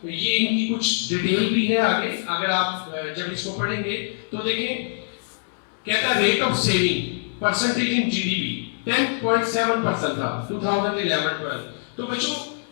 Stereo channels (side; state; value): right; silent; digital silence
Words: ये इनकी कुछ डिटेल भी है आगे, अगर आप जब इसको पढ़ेंगे तो देखें, कहता है rate of saving percentage in GDP 10.7% था 2011-12। तो बच्चों